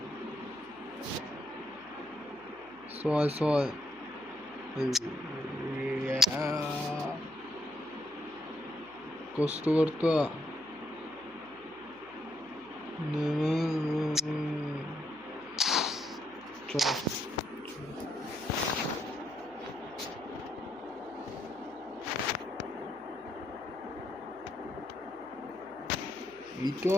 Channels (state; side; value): noise; left; hum, 26 dB below the sound